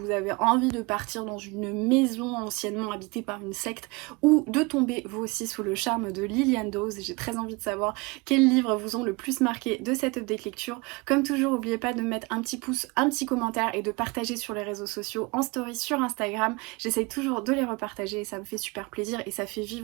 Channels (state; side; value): quieter; left; 26.4 dB